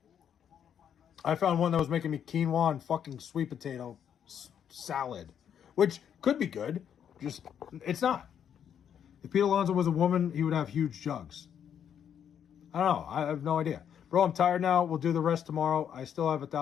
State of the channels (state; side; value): quieter; right; 8.7 dB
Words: I found one that was making me quinoa and fucking sweet potato salad, which could be good. Just, it's not. If Pete Alonso was a woman, he would have huge jugs. I don't know. I have no idea. Bro, I'm tired now. We'll do the rest tomorrow. I still have